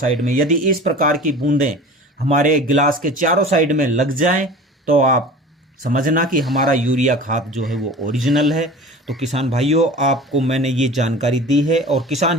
में। यदि इस प्रकार की बूंदें हमारे गिलास के चारों साइड में लग जाएं तो आप समझना कि हमारा यूरिया खाद जो है वो ओरिजिनल है। तो किसान भाइयों, आपको मैंने ये जानकारी दी है और किसान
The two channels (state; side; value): normal; both; correlation 0.39